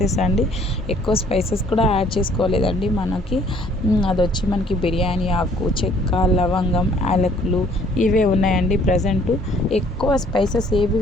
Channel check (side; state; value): both; normal; correlation 0.60